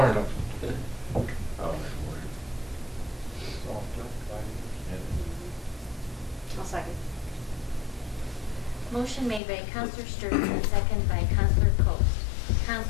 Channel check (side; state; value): right; drops out; at 9.4 s